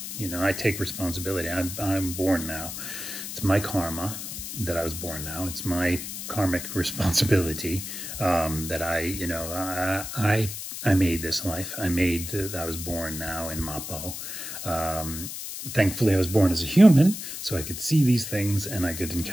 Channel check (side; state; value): left; noise; hiss, 8 dB below the sound